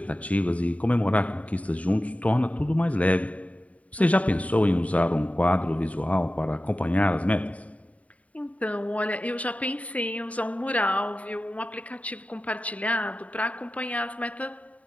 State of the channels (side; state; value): right; late; 0.068 ms